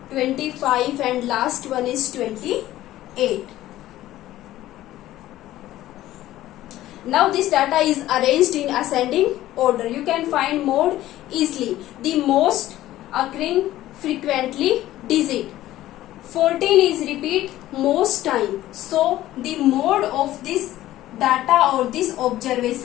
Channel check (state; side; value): quieter; right; 14.7 dB